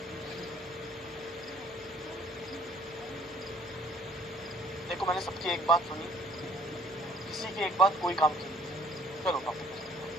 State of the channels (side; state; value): both; normal; correlation 0.59